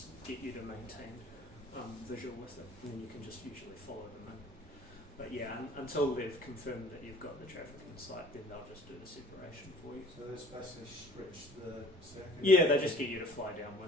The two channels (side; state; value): both; normal; correlation 0.51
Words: get you to maintain visual with it, and then you can just usually follow them in. But yeah, until they've confirmed that you've got the traffic in sight, then they'll just do the separation for you. So this basically stretch the circuit? Yeah, they just get you to fly